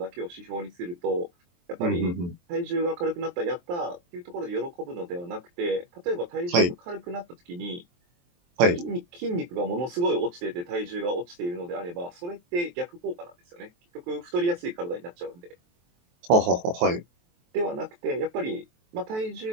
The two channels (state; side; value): late; left; 23 ms